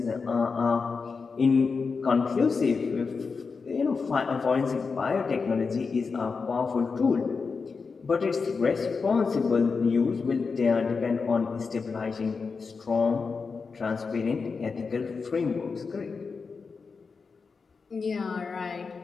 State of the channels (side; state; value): right; quieter; 4.9 dB